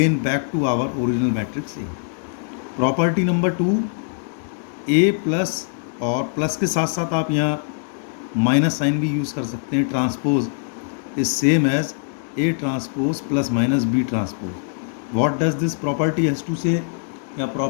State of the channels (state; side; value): silent; right; digital silence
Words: back to our original matrix A. Property number 2, A plus, और प्लस के साथ साथ आप यहाँ माइनस साइन भी यूज़ कर सकते हैं। Transpose is same as A transpose plus minus B transpose. What does this property has to say? या